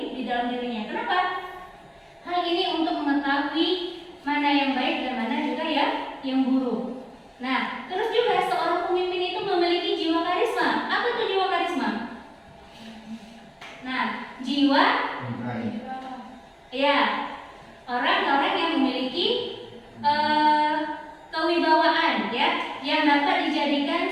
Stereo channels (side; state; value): both; identical; correlation 1.00